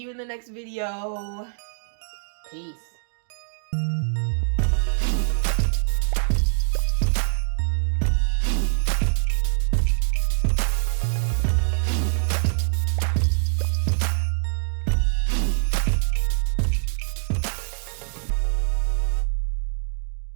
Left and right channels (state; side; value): silent; left; digital silence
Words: in the next video. Peace.